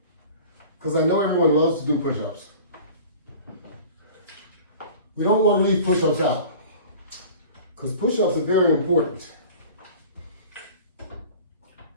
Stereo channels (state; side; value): inverted; both; correlation -0.42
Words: Because I know everyone loves to do push-ups. We don't want to leave push-ups out. Because push-ups are very important.